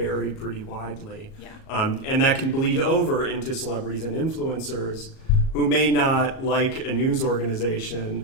pretty widely. Yeah. And that can bleed over into celebrities and influencers who may not, like a news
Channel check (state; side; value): late; right; 37 ms